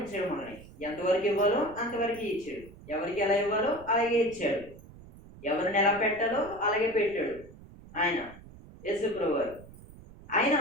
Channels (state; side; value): noise; right; rumble, 19 dB below the sound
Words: మనల్ని. ఎంతవరకు ఇవ్వాలో అంతవరకు ఇచ్చాడు. ఎవరికి ఎలా ఇవ్వాలో అలాగే ఇచ్చాడు. ఎవరిని ఎలా పెట్టాలో అలాగే పెట్టాడు ఆయన యేసుప్రభు వారు. ఆయన